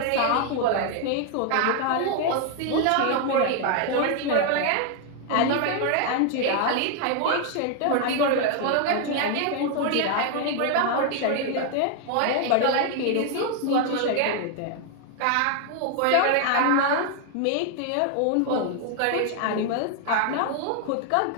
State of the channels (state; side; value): different; both; correlation 0.00